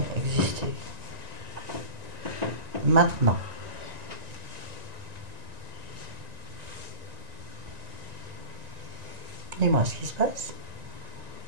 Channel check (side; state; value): left; late; 1.9 ms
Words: existé. Maintenant. Dis-moi ce qui se passe.